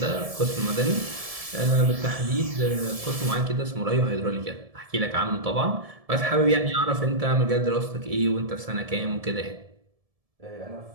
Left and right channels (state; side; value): late; left; 1.7 ms